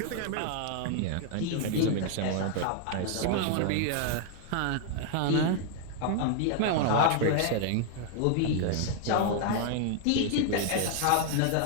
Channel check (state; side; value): different; both; correlation 0.00